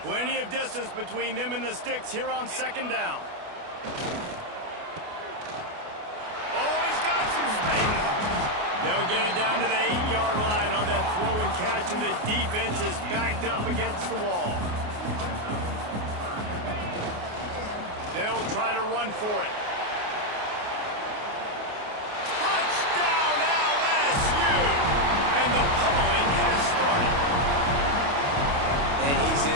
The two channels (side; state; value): left; late; 28 ms